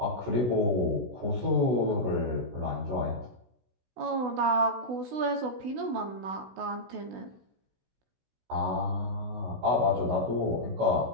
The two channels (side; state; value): left; late; 16 ms